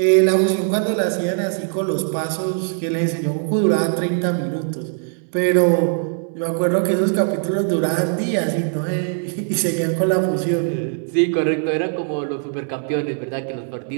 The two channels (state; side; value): silent; left; 59 dB below the other